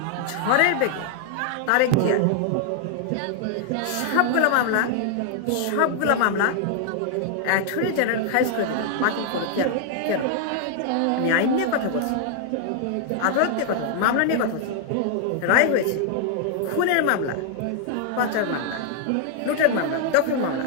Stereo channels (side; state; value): both; different; correlation 0.00